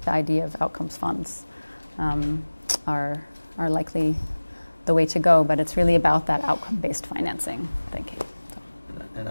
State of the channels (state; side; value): inverted; both; correlation -1.00